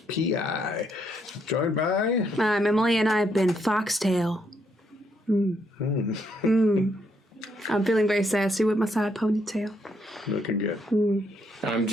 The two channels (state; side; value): normal; both; correlation 0.74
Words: Joined by... I'm Emily, and I've been Foxtail. I'm feeling very sassy with my side ponytail. Looking good. I'm